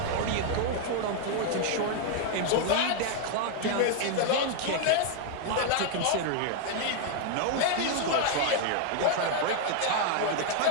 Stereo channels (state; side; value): different; both; correlation 0.00